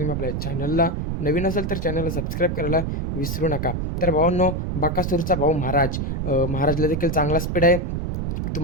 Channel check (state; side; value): noise; right; rumble, 2 dB below the sound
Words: आपल्या चॅनलला नवीन असाल तर चॅनलला सबस्क्राईब करायला विसरू नका. तर भावांनो, बकासूरचा भाऊ महाराजला देखील चांगला स्पीड आहे.